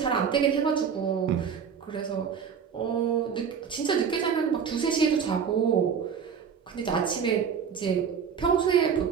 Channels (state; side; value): quieter; left; 7.0 dB